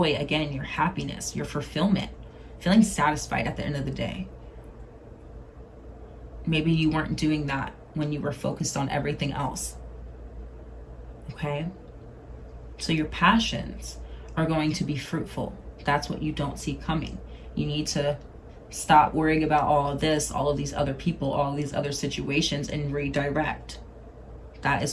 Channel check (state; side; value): identical; both; correlation 1.00